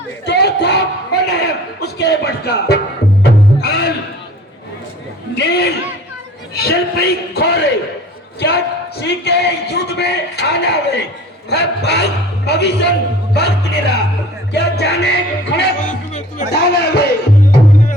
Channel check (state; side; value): normal; both; correlation 0.46